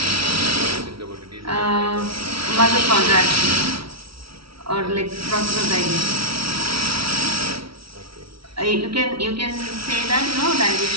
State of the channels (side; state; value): left; late; 0.75 ms